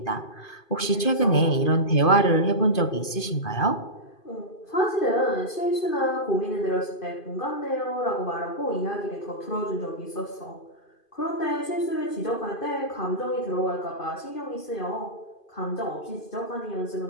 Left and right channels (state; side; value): late; right; 2.5 ms